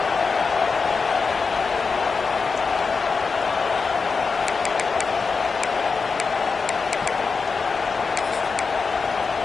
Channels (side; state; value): right; quieter; 4.9 dB